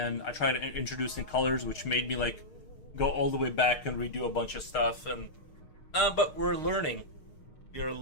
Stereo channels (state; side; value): late; right; 6.5 ms